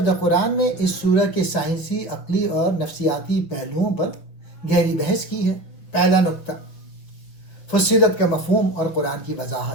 دا قرآن میں اس سورہ کے سائنسی، عقلی اور نفسیاتی پہلوؤں پر گہری بحث کی ہے۔ پہلا نقطہ، فصلت کا مفہوم اور قرآن کی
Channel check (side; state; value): right; late; 6.2 ms